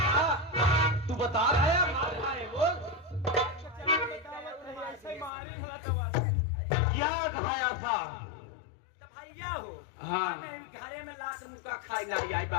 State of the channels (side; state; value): right; drops out; at 5.3 s